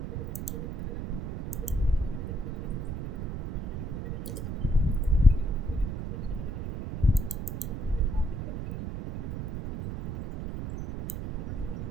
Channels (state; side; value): noise; right; rumble, 4 dB below the sound